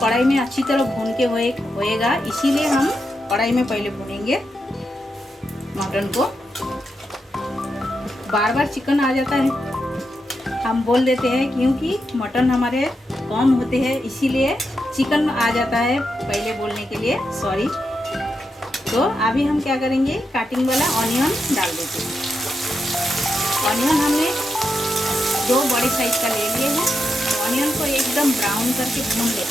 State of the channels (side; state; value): both; normal; correlation 0.85